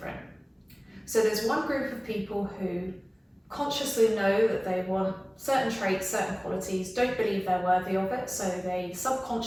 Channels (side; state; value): both; identical; correlation 1.00